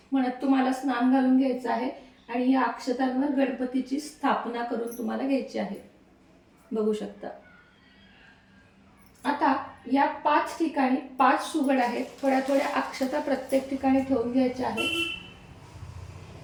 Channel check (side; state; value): both; identical; correlation 1.00